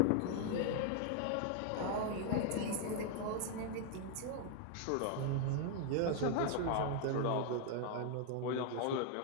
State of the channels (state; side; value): different; both; correlation 0.00